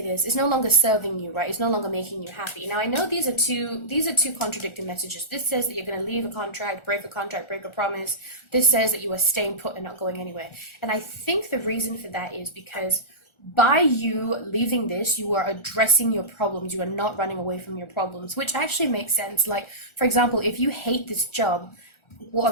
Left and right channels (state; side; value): late; right; 1.4 ms